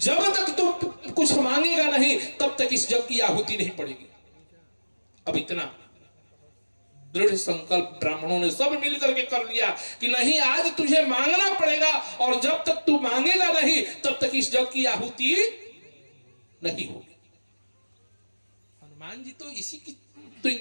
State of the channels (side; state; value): both; inverted; correlation -1.00